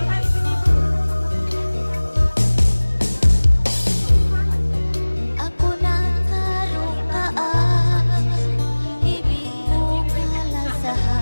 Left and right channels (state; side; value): inverted; both; correlation -1.00